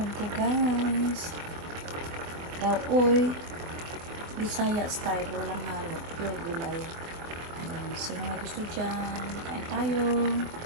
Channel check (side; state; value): left; late; 24 ms